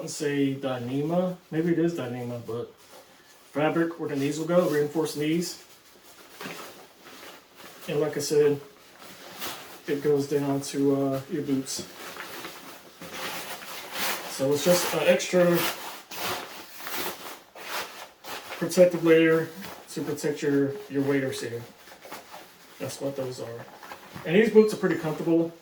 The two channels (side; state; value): both; identical; correlation 1.00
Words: say Dyneema, maybe it is Dyneema, but fabric where the knees will go, reinforced knees. And like I said, it goes down to your boots. So it's just an extra protective layer to protect your waders here. That's what those are. And these boots are pretty comfortable.